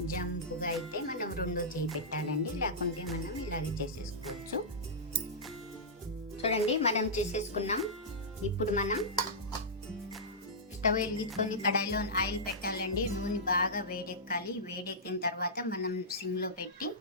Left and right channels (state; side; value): normal; both; correlation -0.14